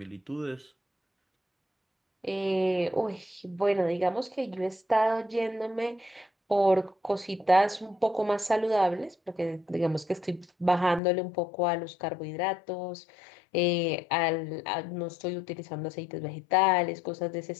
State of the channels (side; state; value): right; drops out; at 11.0 s